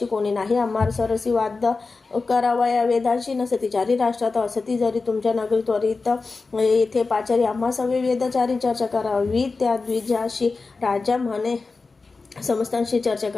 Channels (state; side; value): quieter; right; 4.1 dB